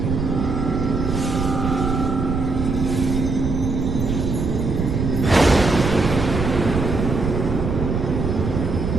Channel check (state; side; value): noise; right; rumble, 2 dB below the sound